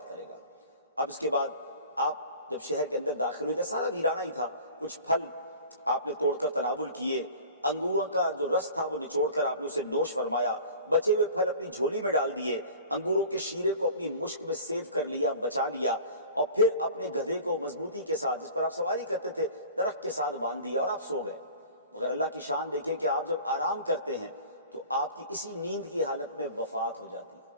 करेगा। अब इसके बाद आप जब शहर के अंदर दाखिल हुए, सारा वीराना ही था, कुछ फल आपने तोड़कर तनावुल किए, अंगूरों का जो रस था वो निचोड़कर आपने उसे नोश फरमाया, बचे हुए फल अपनी झोली में डाल दिए, अंगूरों के शीरे को अपनी मुश्क में सेव कर लिया, बचा लिया, और फिर अपने गधे को मजबूती के साथ, जिस पर आप सवारी करते थे, दरख्त के साथ बांध दिया और आप सो गए। मगर अल्लाह की शान देखें कि आप जब आराम करते हैं तो आपकी इसी नींद की हालत में वफात हो जाती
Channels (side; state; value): both; inverted; correlation -0.42